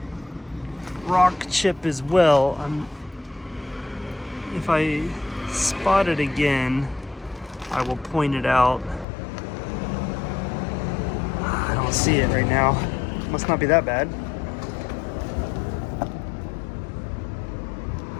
rock chip as well. If I spot it again, I will point it out. I don't see it right now. Must not be that bad.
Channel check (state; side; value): drops out; right; at 9.1 s